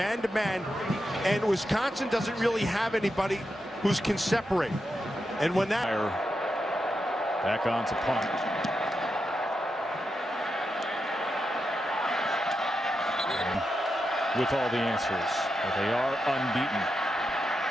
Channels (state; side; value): normal; both; correlation 0.87